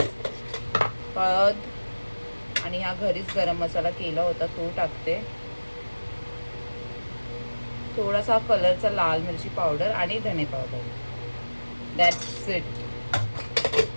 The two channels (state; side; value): inverted; both; correlation -1.00